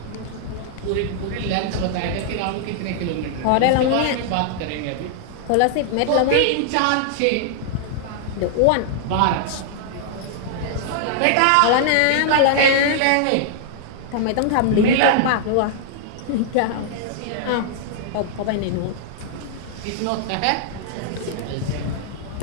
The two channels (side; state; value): both; different; correlation -0.01